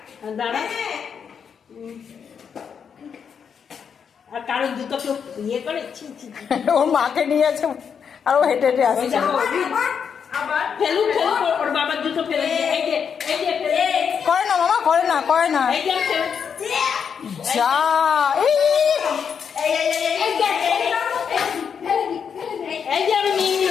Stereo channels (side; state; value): right; quieter; 7.0 dB